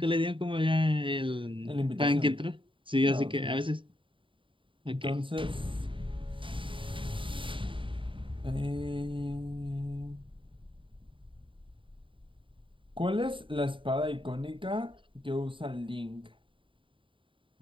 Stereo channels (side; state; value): left; late; 0.25 ms